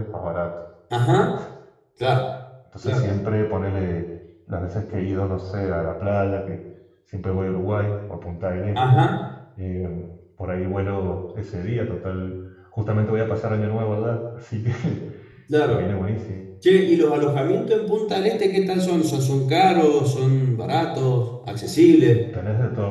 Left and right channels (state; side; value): identical; both; correlation 1.00